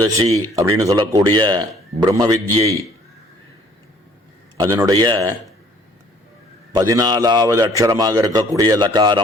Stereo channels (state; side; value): normal; both; correlation 0.57